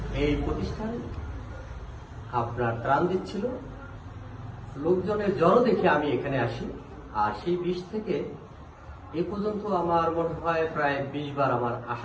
এই প্রতিষ্ঠান আপনার ত্রাণ দিচ্ছিল, লোকজনের জড়ো দেখে আমি এখানে আসি। আর সেই 20 থেকে এ পর্যন্ত আমার মনে হয় প্রায় 20 বার আমার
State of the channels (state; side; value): identical; both; correlation 1.00